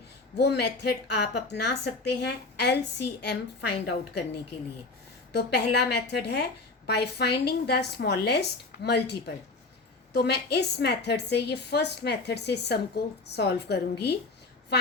वो मेथड आप अपना सकते हैं LCM फाइंड आउट करने के लिए. तो पहला मेथड है by finding the smallest multiple. तो मैं इस मेथड से, ये फर्स्ट मेथड से सम को सॉल्व करूंगी.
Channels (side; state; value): right; quieter; 3.5 dB